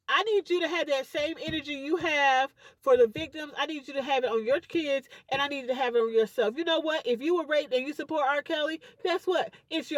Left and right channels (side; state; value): both; identical; correlation 1.00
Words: I need you to have that same energy you have for the victims. I need you to have it on your kids, and I need you to have it on yourself. You know what? If you were raped and you support R. Kelly, guess what? It's